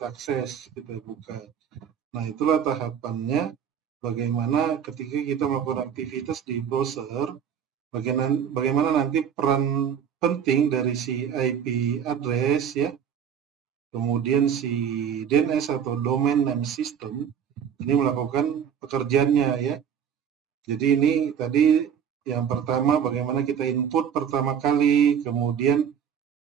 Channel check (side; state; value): left; quieter; 8.2 dB